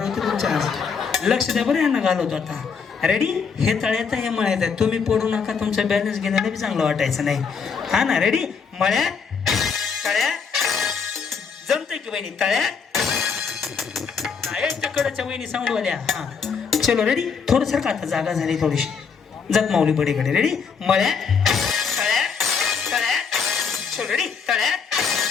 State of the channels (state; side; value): quieter; right; 5.9 dB